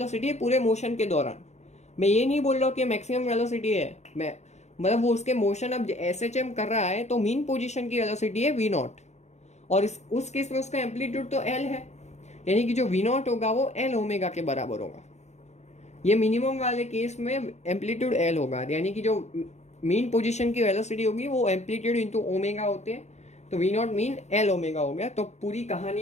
है पूरे मोशन के दौरान। मैं ये नहीं बोल रहा हूँ कि मैक्सिमम वेलोसिटी है, मैं मतलब वो उसके मोशन अब एस एच एम कर रहा है तो मीन पोजीशन की वेलोसिटी है वी नॉट, और उस केस में उसका एम्पलीट्यूड तो एल है, यानी कि जो वी नॉट होगा वो एल ओमेगा के बराबर होगा। ये मिनिमम वाले केस में एम्पलीट्यूड एल होगा, यानी कि जो मीन पोजीशन की वेलोसिटी होगी वो एम्पलीट्यूड इंटू ओमेगा होते हैं, तो we naught mean L omega हो गया। तो पूरी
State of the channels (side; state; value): right; late; 0.33 ms